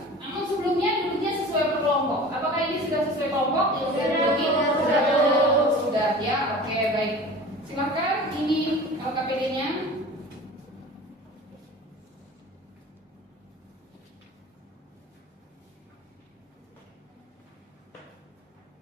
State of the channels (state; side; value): normal; both; correlation 0.39